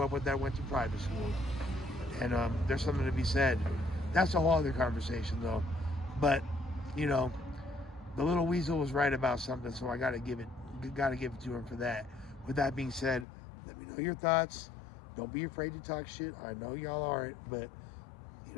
up with that went to private school. And there's something to be said. That's a whole other conversation, though. But, you know, the little weasel was right about something, so I gotta give it to him for that. With that being said, let me know your thoughts. Don't be afraid to talk shit. I know y'all aren't, but you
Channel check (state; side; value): drops out; right; at 13.2 s